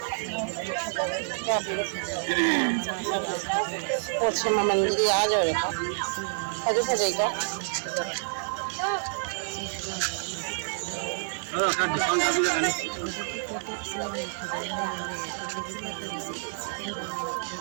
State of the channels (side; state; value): left; silent; 56 dB below the other